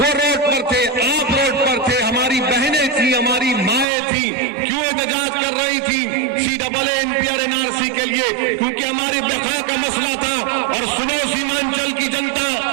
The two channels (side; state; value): left; drops out; at 3.9 s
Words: रोड पर थे, आप रोड पर थे, हमारी बहनें थी, हमारी माएं थी, क्यों एहतजाज कर रही थी सीएए, एनपीआर, एनआरसी के लिए? क्योंकि हमारी बका का मसला था। और सुनो सीमांचल की जनता,